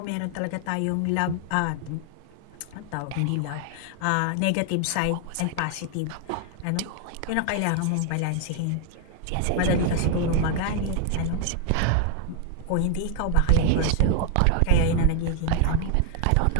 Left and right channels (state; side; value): different; both; correlation 0.00